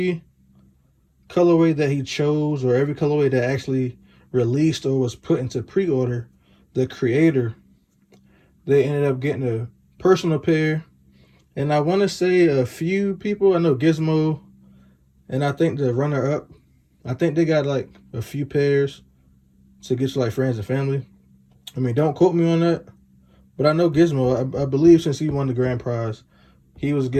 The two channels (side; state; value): both; identical; correlation 1.00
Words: colorway that he chose, or every colorway that actually released or was put into pre-order, the creator, they ended up getting a personal pair. And I want to say a few people, I know Gizmo, and I think the runner-up, I think they got like a few pairs to get to like friends and family. I mean, don't quote me on that, but I know Gizmo, I believe since he won the grand prize, he was